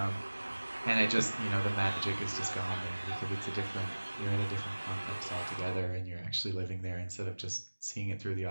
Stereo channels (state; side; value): inverted; both; correlation -1.00